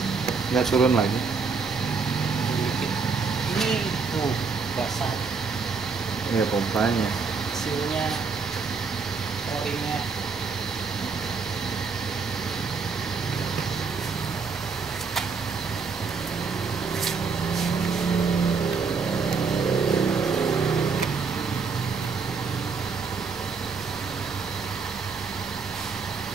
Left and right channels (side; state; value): left; quieter; 5.0 dB